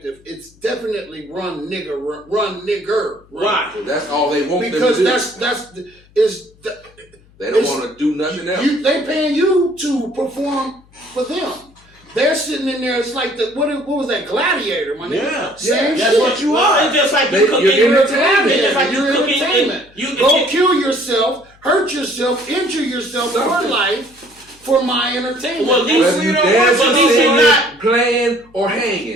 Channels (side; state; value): left; noise; hum, 29 dB below the sound